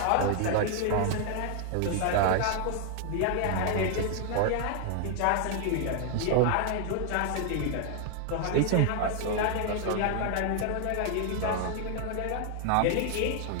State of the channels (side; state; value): both; different; correlation 0.00